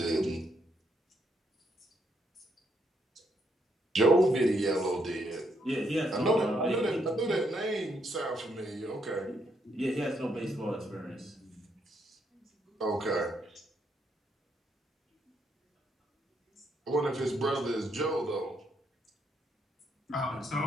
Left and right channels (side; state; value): both; normal; correlation 0.75